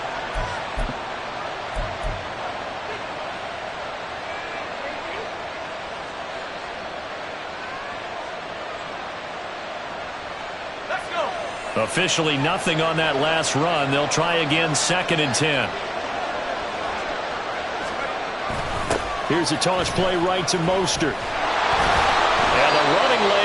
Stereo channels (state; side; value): identical; both; correlation 1.00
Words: Officially nothing on that last run. They'll try again, 2nd and 10. Here's a toss play right to Mostert. And the running